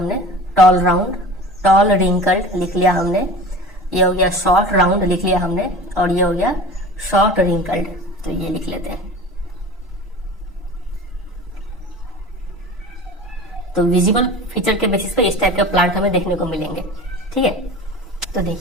टॉल राउंड, टॉल रिंकल्ड लिख लिया हमने। ये हो गया शॉर्ट राउंड लिख लिया हमने, और ये हो गया शॉर्ट रिंकल्ड, तो ये लिख लेते हैं। तो विजिबल फीचर के बेसिस पे इस टाइप के प्लांट हमें देखने को मिलेंगे। ठीक है, तो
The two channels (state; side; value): normal; both; correlation 0.37